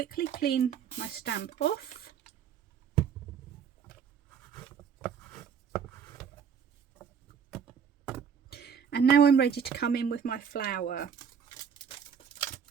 clean my stamp off. And now I'm ready to come in with my flower.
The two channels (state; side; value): quieter; left; 7.3 dB